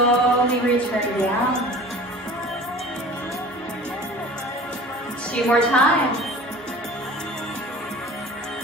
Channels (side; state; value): both; normal; correlation 0.42